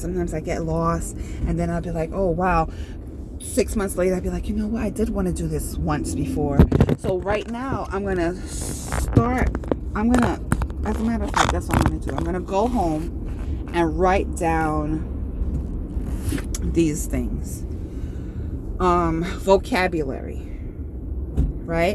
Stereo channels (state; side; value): identical; both; correlation 1.00